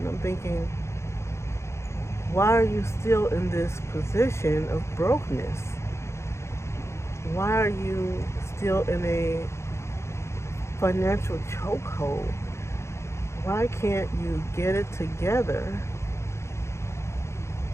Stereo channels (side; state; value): right; late; 0.13 ms